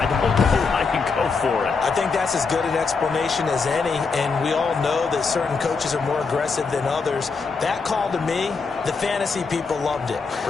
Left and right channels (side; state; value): right; quieter; 4.8 dB